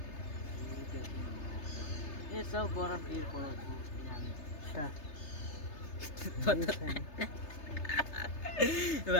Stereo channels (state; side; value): late; right; 3.3 ms